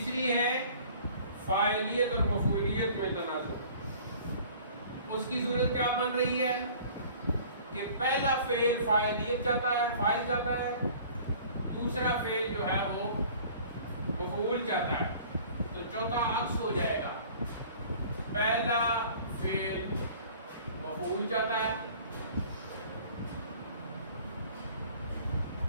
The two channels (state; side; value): inverted; both; correlation -0.49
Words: ہے فاعلیت اور مفعولیت میں تنازع. اس کی صورت کیا بن رہی ہے کہ پہلا فعل فاعلیت چاہتا ہے، فاعل چاہتا ہے، دوسرا فعل جو ہے وہ مفعول چاہتا ہے. تو چوتھا عکس ہو جائے گا. پہلا فعل مفعول چاہتا ہے